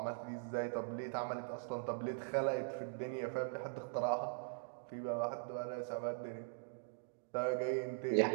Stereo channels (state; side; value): silent; left; digital silence